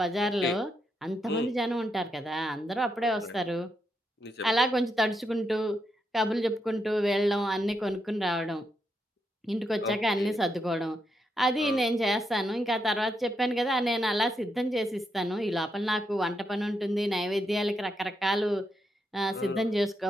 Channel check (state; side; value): normal; both; correlation 0.82